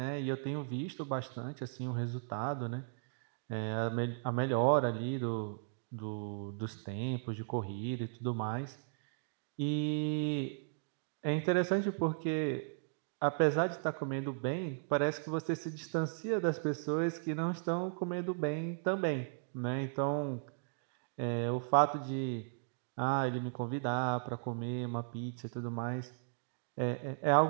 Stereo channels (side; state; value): left; silent; digital silence